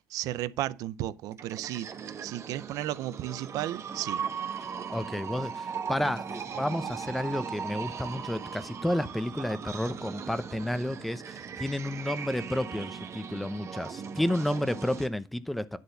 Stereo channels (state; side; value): normal; both; correlation 0.80